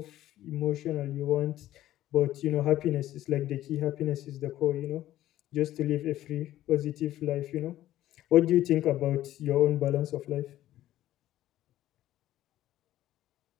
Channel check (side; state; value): right; quieter; 13.8 dB